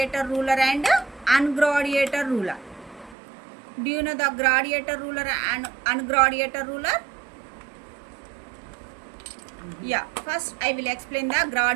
ruler and ungradiator ruler. Do you know the gradiator ruler and ungradiator ruler? Yeah, first I will explain the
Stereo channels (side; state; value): left; drops out; at 3.2 s